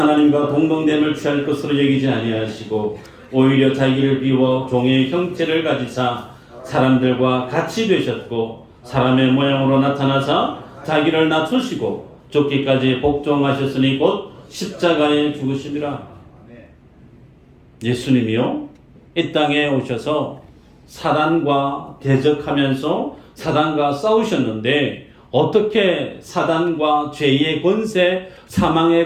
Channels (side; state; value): both; identical; correlation 1.00